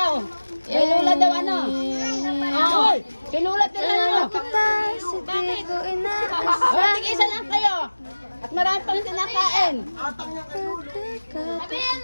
Ay Lola daw ano? Hoy! Si Lola tira Kita, si Tigo, inaasa. Oh, tig-isa lang kayo. At marami pang sinakain.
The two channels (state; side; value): inverted; both; correlation -1.00